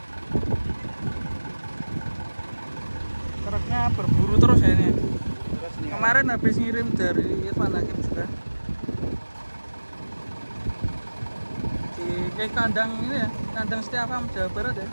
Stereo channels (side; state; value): both; inverted; correlation -1.00